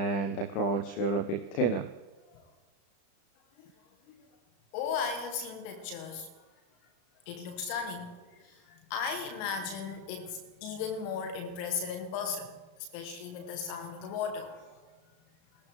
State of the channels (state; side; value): late; right; 35 ms